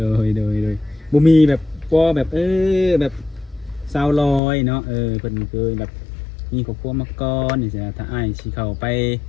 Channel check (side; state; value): right; drops out; at 4.4 s